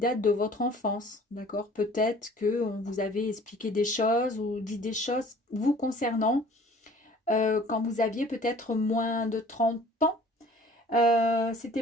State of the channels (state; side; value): normal; both; correlation 0.50